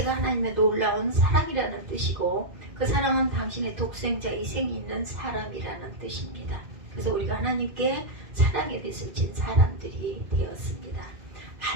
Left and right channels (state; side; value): late; left; 2.1 ms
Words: 하나님의 놀라운 사랑이라는 뜻이고 그 사랑은 당신의 독생자 희생이 있는 사람이라는 뜻입니다. 그래서 우리가 하나님께 사랑의 빚을 진 사람들이 되었습니다.